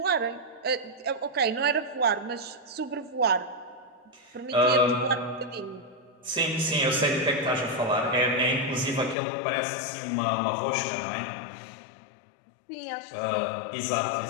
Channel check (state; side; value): drops out; right; at 9.2 s